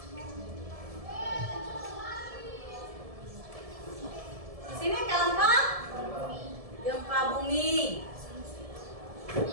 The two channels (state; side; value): late; left; 1.7 ms